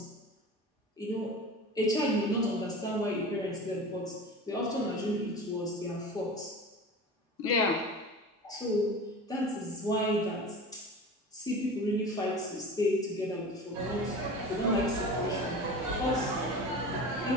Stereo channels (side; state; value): both; normal; correlation 0.34